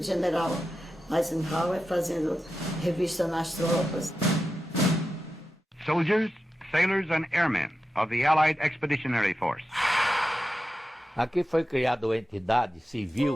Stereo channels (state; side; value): normal; both; correlation 0.91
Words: general Eisenhower fazendo revista nas tropas. Soldiers, sailors and airmen of the Allied Expeditionary Force. Aqui foi criada uma entidade